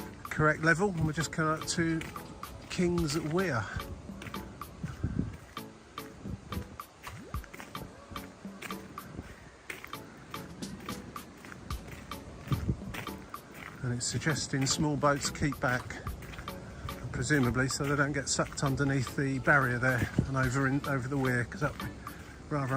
correct level. And we're just coming up to King's Weir. And it's suggesting small boats keep back, presumably so they don't get sucked underneath the barrier there and over the weir, because that's a rather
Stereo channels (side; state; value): both; identical; correlation 1.00